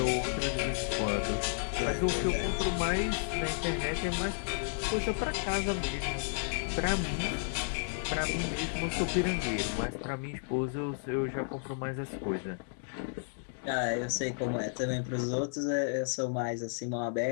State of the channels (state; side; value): silent; right; digital silence